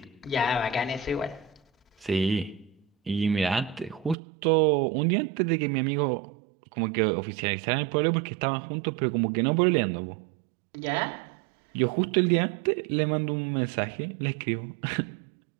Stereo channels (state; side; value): drops out; left; at 4.2 s